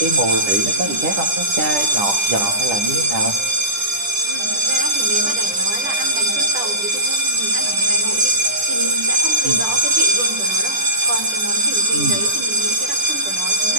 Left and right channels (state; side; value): late; left; 10 ms